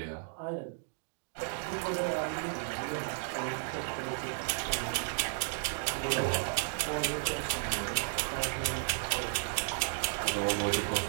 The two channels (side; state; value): left; silent; digital silence